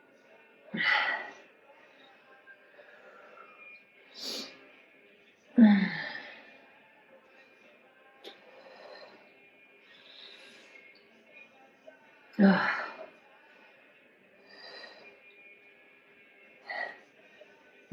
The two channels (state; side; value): identical; both; correlation 1.00